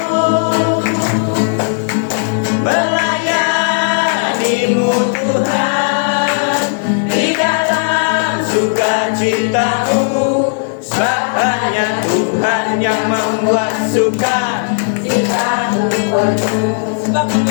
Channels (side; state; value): right; silent; digital silence